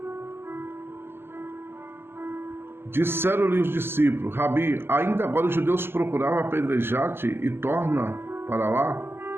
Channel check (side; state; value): left; late; 0.11 ms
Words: Disseram-lhe os discípulos: Rabi, ainda agora os judeus procuravam apedrejar-te e torna para lá?